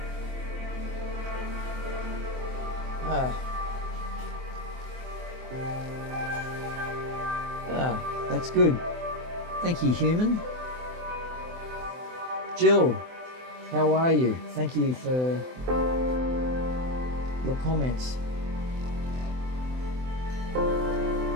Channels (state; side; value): late; left; 24 ms